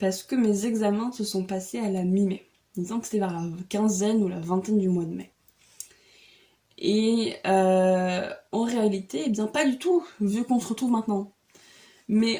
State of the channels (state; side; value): identical; both; correlation 1.00